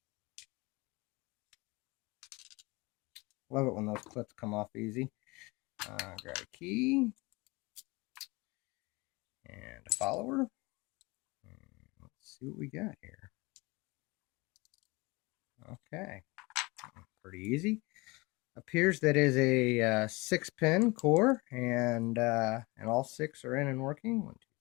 Love it when those clips come off easy. Grab a key and a follower. And let's see what we got here. Okay, pretty easy. Appears that is a 6-pin core, and all 6 are in and working. 1, 2,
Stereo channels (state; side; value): quieter; right; 24.7 dB